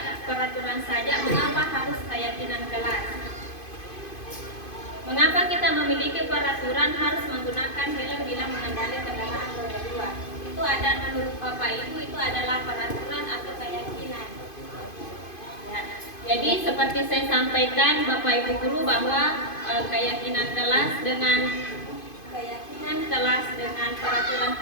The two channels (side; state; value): right; late; 2.5 ms